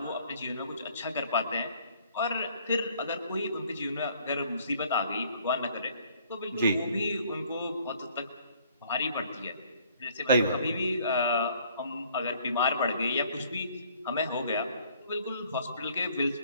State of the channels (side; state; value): both; inverted; correlation -0.60